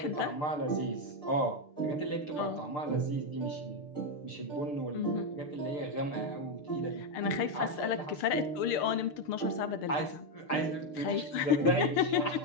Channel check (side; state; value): right; late; 6.7 ms